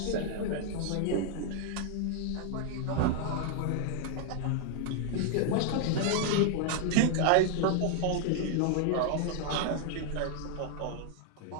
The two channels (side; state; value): both; different; correlation 0.00